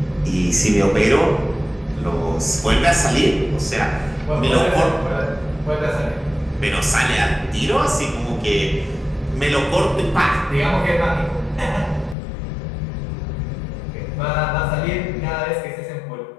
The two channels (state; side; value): drops out; right; at 12.2 s